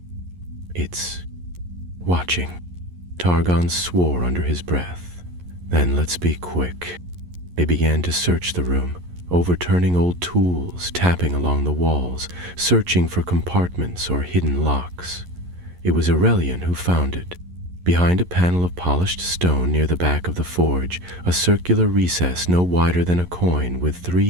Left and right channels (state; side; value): late; left; 11 ms